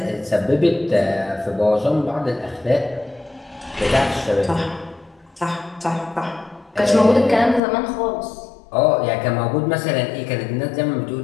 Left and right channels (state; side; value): drops out; right; at 7.6 s